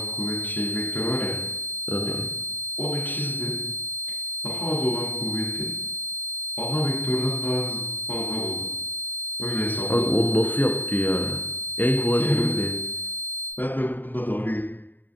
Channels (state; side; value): late; right; 0.090 ms